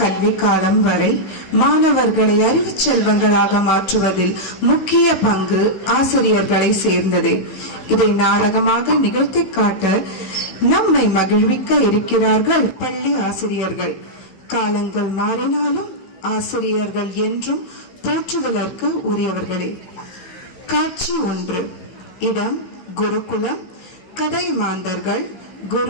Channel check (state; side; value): late; right; 16 ms